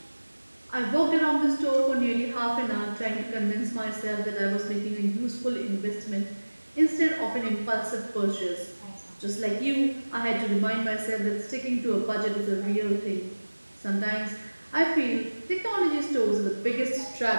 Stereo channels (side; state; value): both; inverted; correlation -1.00